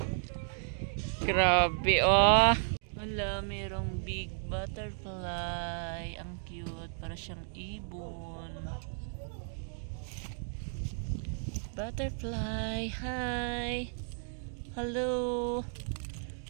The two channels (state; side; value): silent; left; digital silence